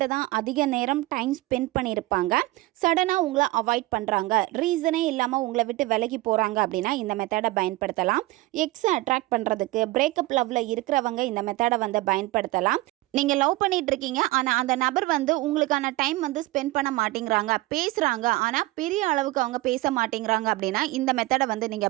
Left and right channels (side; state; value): left; quieter; 19.8 dB